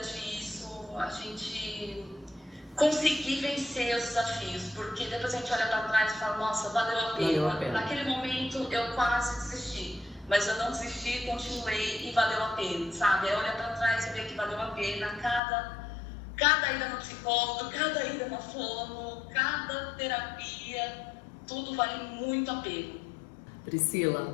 isso, a gente conseguir vencer os desafios, porque depois a gente olha para trás e fala, nossa, valeu a pena. Naquele momento eu quase desisti, mas eu não desisti, continuei e valeu a pena, sabe? É olhar para trás e ver que valeu a pena cada ida no psicólogo, cada ida na fono, cada terapia, tudo vale muito a pena.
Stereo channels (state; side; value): drops out; right; at 15.4 s